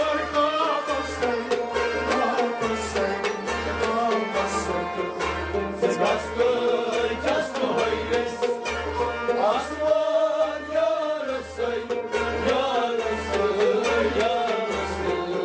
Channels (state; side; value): identical; both; correlation 1.00